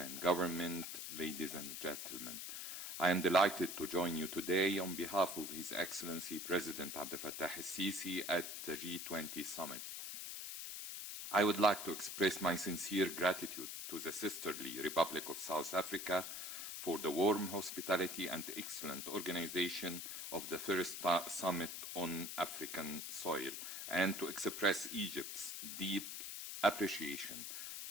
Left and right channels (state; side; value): noise; left; hiss, 6 dB below the sound